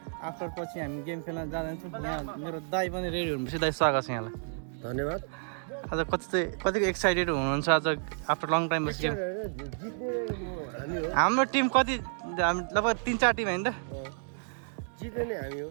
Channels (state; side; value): silent; left; digital silence